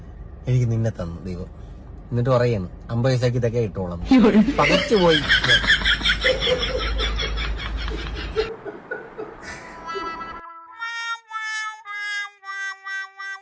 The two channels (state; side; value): identical; both; correlation 1.00